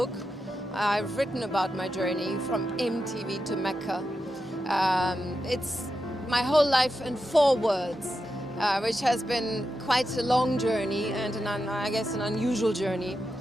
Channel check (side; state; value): both; normal; correlation 0.88